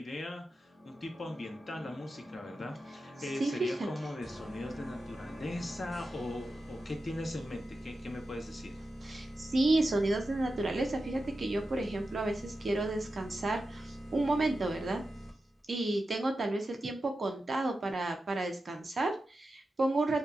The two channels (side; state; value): both; normal; correlation 0.91